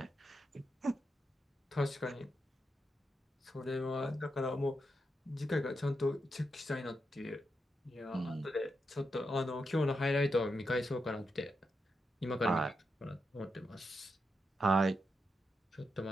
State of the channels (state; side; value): normal; both; correlation 0.85